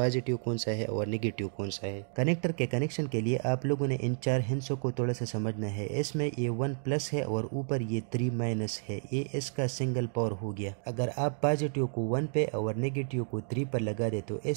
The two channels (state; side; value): silent; left; digital silence